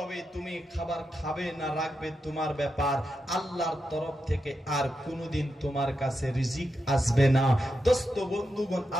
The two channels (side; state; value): both; normal; correlation 0.87